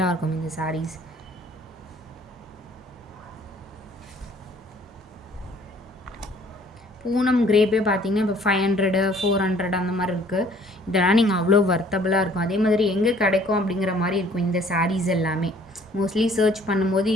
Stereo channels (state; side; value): normal; both; correlation 0.57